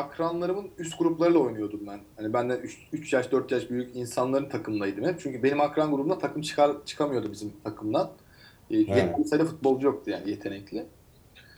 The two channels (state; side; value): identical; both; correlation 1.00